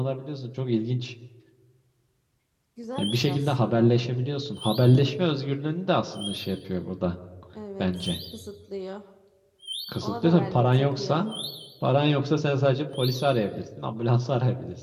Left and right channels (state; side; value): identical; both; correlation 1.00